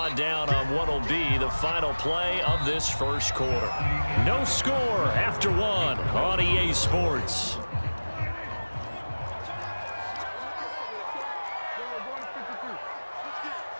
down on what will be the final play of this first quarter. No score after one on EA Sports.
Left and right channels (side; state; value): both; inverted; correlation -1.00